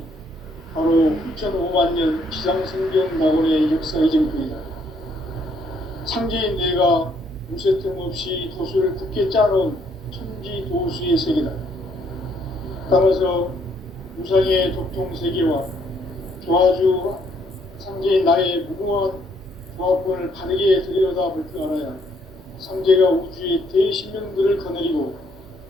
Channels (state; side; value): normal; both; correlation 0.69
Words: 바로 후천 5만 년 지상성경 낙원의 역사의 정통이다. 상제인 내가 무쇠 틈 없이 도수를 굳게 짜놓은 천지 도수의 세계다. 따라서 무상의 도통 세계와 조화주 상제인 나의 무궁한 조합권을 바르게 들여다볼 줄 알아야 상제가 우주의 대신명들을 거느리고